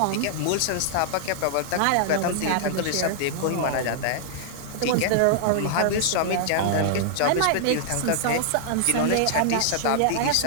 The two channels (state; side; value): different; both; correlation -0.01